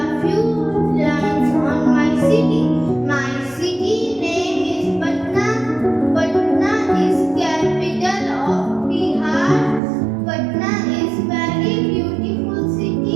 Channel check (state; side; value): drops out; left; at 9.8 s